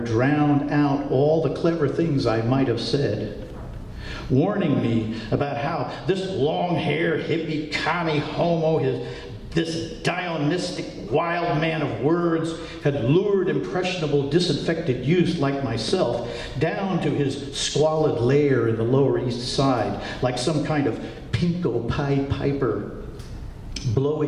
drowned out all the clever things I might have said, warning me about how this long-haired, hippie, commie homo, this Dionistic wild man of words, had lured impressionable, disaffected youth like myself down to his squalid lair in the Lower East Side, like some kind of pinko Pied Piper,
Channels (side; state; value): both; identical; correlation 1.00